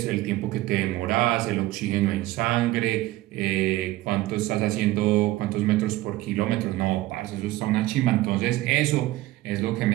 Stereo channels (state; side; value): quieter; left; 17.2 dB